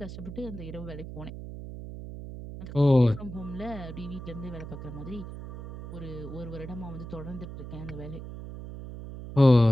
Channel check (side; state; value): right; noise; hum, 10 dB below the sound